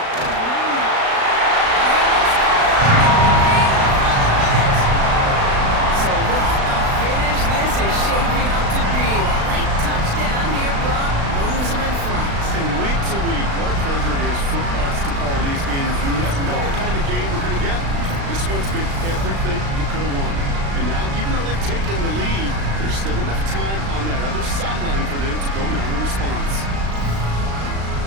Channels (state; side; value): late; left; 36 ms